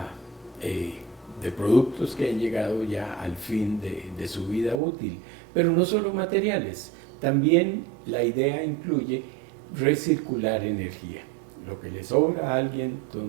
de productos que han llegado ya al fin de su vida útil. Pero no solo materiales, también la idea incluye recircular energía. Lo que le sobra a alguien,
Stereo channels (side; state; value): left; drops out; at 4.8 s